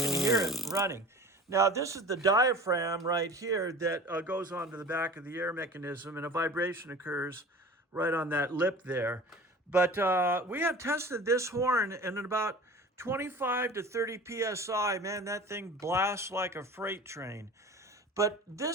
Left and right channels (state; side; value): normal; both; correlation 0.39